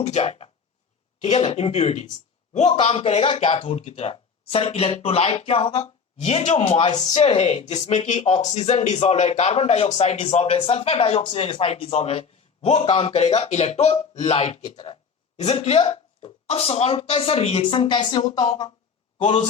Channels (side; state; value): right; quieter; 5.8 dB